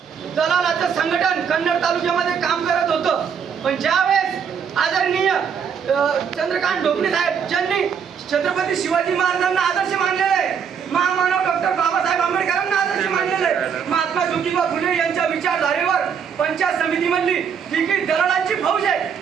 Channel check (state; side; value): quieter; left; 7.1 dB